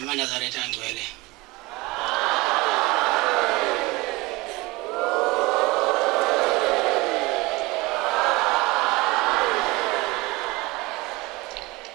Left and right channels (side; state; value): left; quieter; 22.6 dB